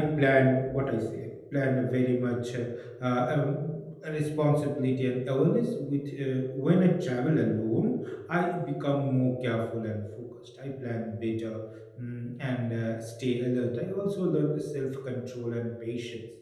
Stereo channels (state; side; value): identical; both; correlation 1.00